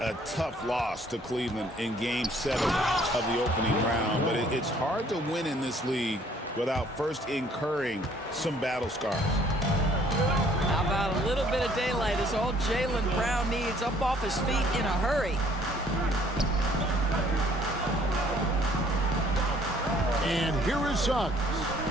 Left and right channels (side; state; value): both; normal; correlation 0.60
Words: tough loss to Cleveland in Game 7 of the opening round. But it's hard to win in this league without first incurring some battle scars. How about a little bit of daylight is all Jaylen Brown needs, up off his feet in a hurry. And here is Suggs.